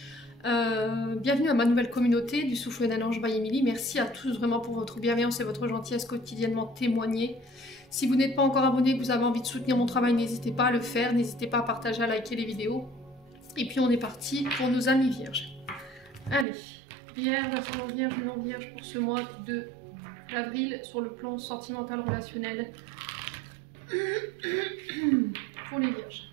Bienvenue à ma nouvelle communauté du Souffle d'un ange by Emily. Merci à tous vraiment pour votre bienveillance et votre gentillesse quotidiennement témoignée. Si vous n'êtes pas encore abonné et que vous avez envie de soutenir mon travail, n'hésitez pas à le faire, n'hésitez pas à partager, à liker les vidéos. Et puis on est parti pour nos amis vierges. Allez. Vierge, ascendant vierge, non vierge pour ce mois d'avril sur le plan sentimental relationnel pour les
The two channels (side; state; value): left; drops out; at 16.4 s